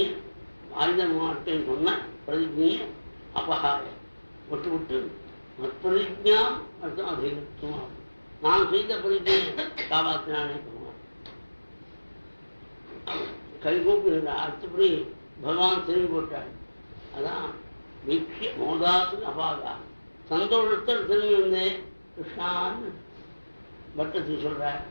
ஆயுதம் மாட்டேன்னு சொன்ன பிரதிஜையை அபகாய விட்டு விட்டு பிரதிஜாம் அர்த்தம் அதிகத்துவம் நான் செய்த பிரதிஜையை காப்பாற்றினானே சொல்லுவான். கைகூப்பி அடுத்தபடி பகவான் திரும்பி போட்டார். அதான் வீக்ஷிய மோதாசு அபாகா சந்தோஷத்தில் திரும்பி வந்தேன் கிருஷ்ணான்னு பட்டத்து சொல்றார்.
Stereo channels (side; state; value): both; inverted; correlation -1.00